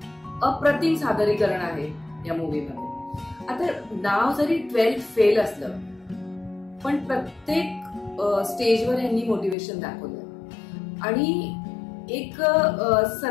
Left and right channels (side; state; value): right; drops out; at 9.6 s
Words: अप्रतिम सादरीकरण आहे या मूवीमध्ये. आता नाव जरी 12th फेल असलं पण प्रत्येक स्टेजवर यांनी मोटिवेशन दाखवलं आणि एक